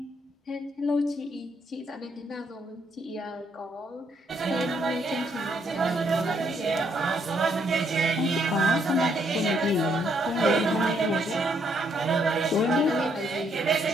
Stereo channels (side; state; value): both; normal; correlation 0.72